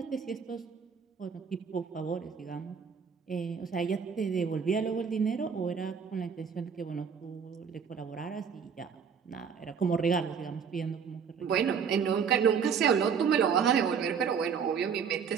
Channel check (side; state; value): left; quieter; 6.6 dB